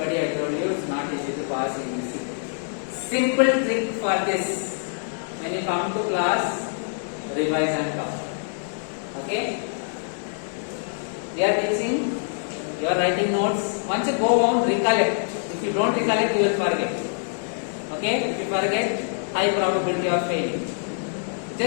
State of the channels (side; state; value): right; silent; 59 dB below the other